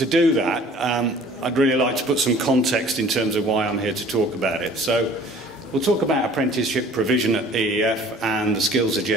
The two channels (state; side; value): normal; both; correlation 0.50